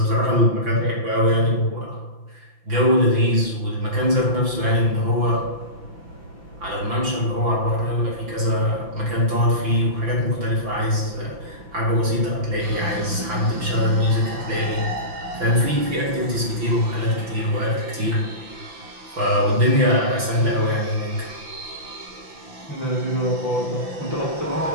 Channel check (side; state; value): left; late; 5.9 ms